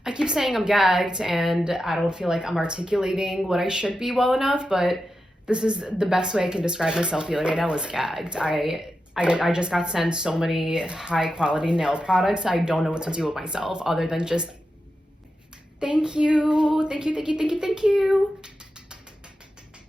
keep saying I'm gagged and I don't feel like I'm articulating what I should be well enough, but this is the best way I can describe myself feeling right now is gagged. I just got sent so many high quality nail products. I don't know what to do with myself other than just thank you. Thank you.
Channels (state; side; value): normal; both; correlation 0.90